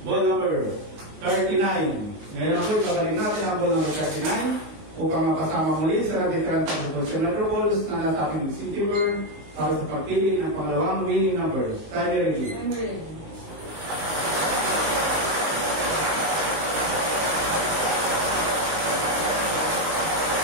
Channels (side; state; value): left; late; 19 ms